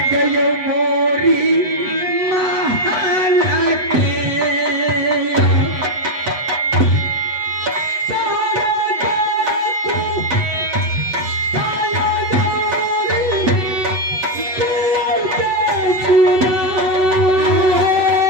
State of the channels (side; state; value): left; late; 8.0 ms